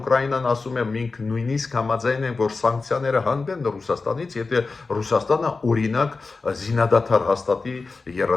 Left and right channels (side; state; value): right; quieter; 4.0 dB